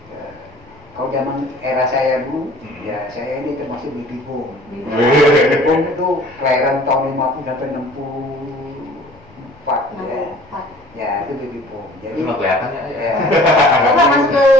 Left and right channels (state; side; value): noise; left; rumble, 28 dB below the sound